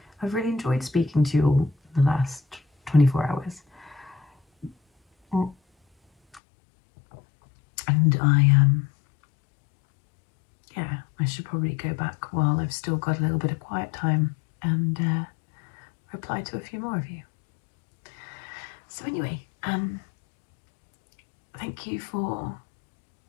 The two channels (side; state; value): right; drops out; at 6.4 s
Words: I've really enjoyed speaking to you all the last 24 hours. And yeah, I should probably go back while I've still got a little bit of quiet time and reply to a few more of you. So anyway, thank you for